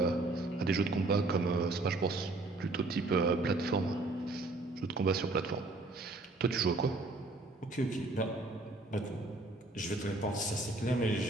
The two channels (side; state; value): left; quieter; 3.0 dB